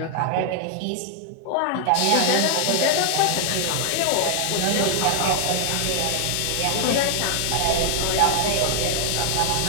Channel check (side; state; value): both; different; correlation 0.00